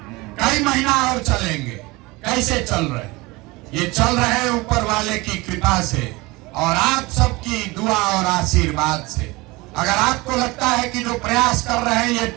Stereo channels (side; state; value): left; quieter; 22.9 dB